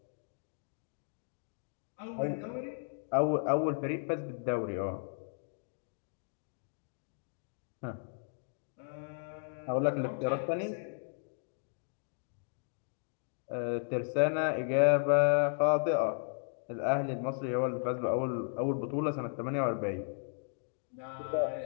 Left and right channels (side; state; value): right; silent; digital silence